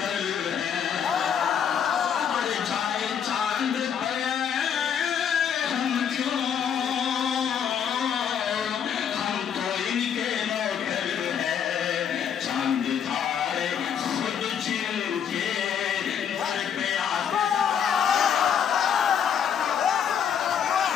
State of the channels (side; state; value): right; quieter; 8.0 dB